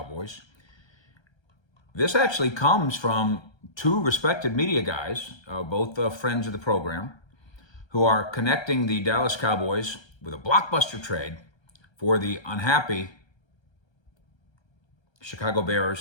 This actually comes from two respected media guys, both friends of the program, who are connecting the Dallas Cowboys with a blockbuster trade for the unhappy Chicago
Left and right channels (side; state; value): right; late; 1.3 ms